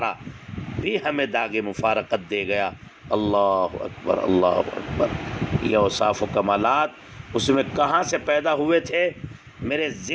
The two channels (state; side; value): identical; both; correlation 1.00